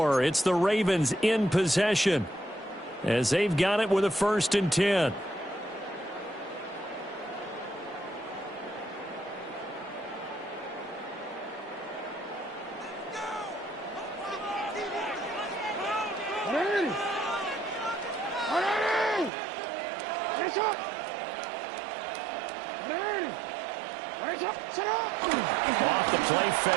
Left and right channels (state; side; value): drops out; left; at 19.3 s